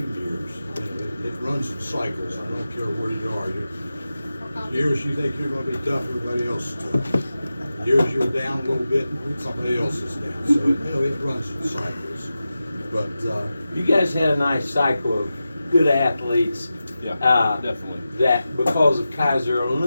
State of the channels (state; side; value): inverted; both; correlation -0.93